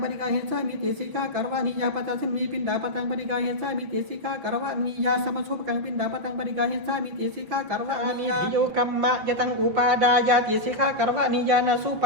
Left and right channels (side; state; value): left; late; 6.0 ms